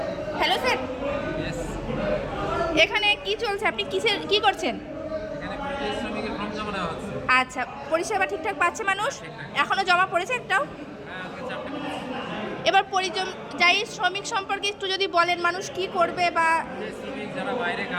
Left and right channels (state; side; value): identical; both; correlation 1.00